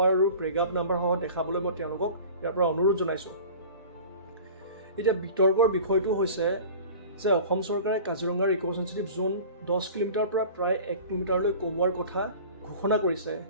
আৰু পেৰাগ্ৰাফ নাম্বাৰ সহ দেখাবলৈ মই তেওঁলোকক ইয়াৰ পৰা অনুৰোধ জনাইছোঁ। এতিয়া বিতৰ্কৰ বিষয়টো হৈছে যে অসম চৰকাৰে কাজিৰঙাৰ ইক' চেনচিটিভ জোন 10 কিলোমিটাৰৰ পৰা প্ৰায় 1 কিলোমিটাৰলৈ কমোৱাৰ কথা ঘোষণা কৰিছে।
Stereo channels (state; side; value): inverted; both; correlation -0.40